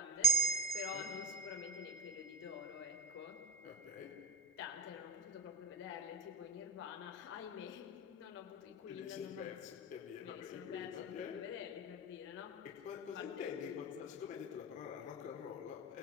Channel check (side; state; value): both; normal; correlation 0.22